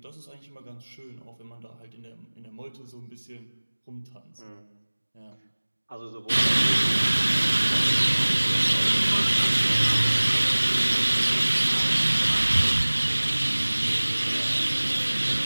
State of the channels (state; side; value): inverted; both; correlation -1.00